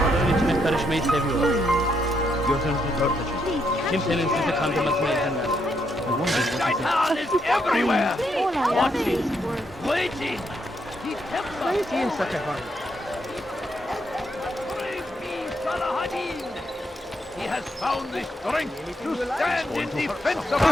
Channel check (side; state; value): both; normal; correlation 0.77